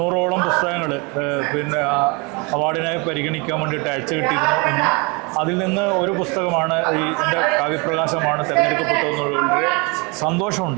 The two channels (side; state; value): left; quieter; 29.3 dB